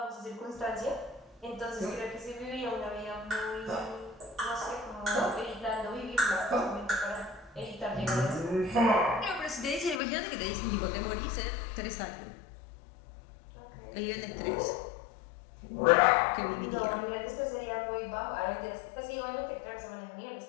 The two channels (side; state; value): right; drops out; at 10.0 s